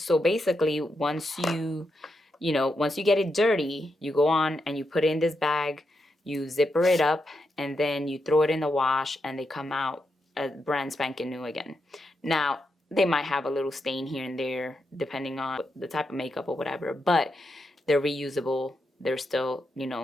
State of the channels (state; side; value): normal; both; correlation 0.85